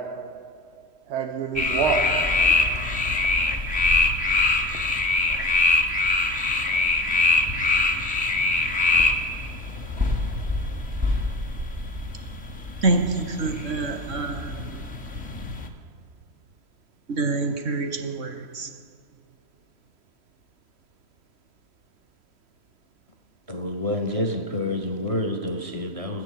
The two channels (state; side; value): late; left; 3.1 ms